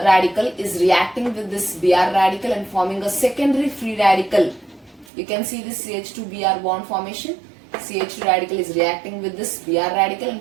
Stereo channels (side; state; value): left; drops out; at 5.1 s